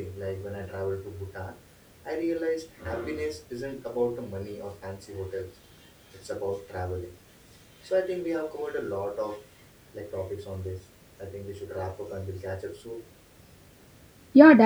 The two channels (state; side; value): identical; both; correlation 1.00